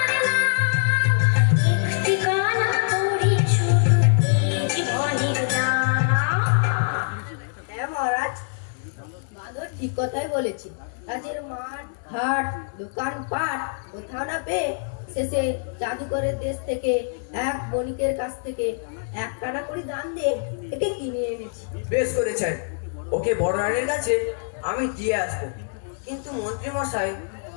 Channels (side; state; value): right; silent; digital silence